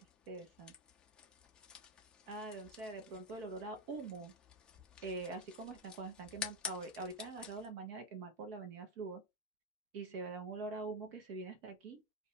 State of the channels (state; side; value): normal; both; correlation 0.07